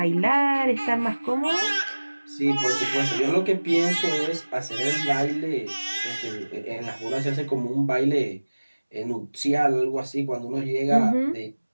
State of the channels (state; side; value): inverted; both; correlation -1.00